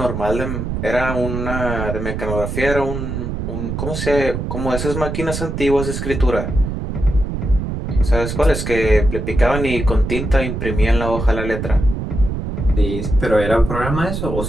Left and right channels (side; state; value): right; noise; rumble, 4 dB below the sound